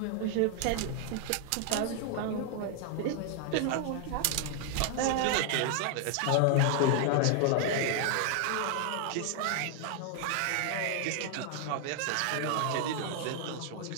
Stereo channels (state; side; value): different; both; correlation 0.00